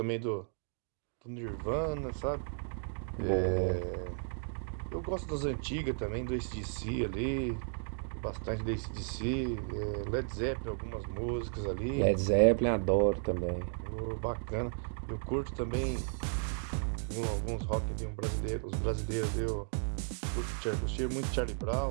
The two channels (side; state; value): left; silent; 55 dB below the other